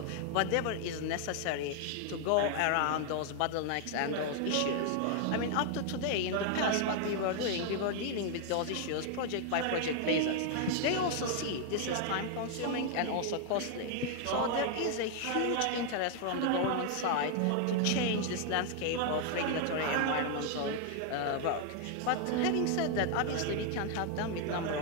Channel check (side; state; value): both; different; correlation 0.00